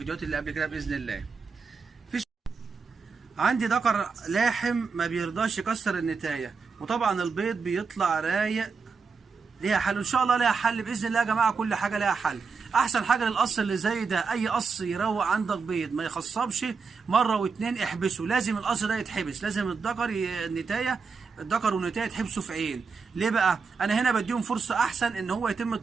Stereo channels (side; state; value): left; quieter; 5.1 dB